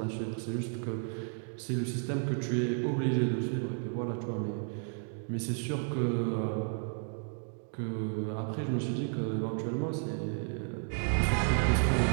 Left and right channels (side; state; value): left; silent; 56 dB below the other